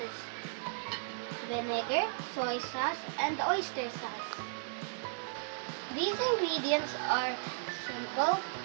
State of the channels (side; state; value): left; silent; 54 dB below the other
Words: Vinegar, soy sauce, and oyster sauce. These ingredients are simple,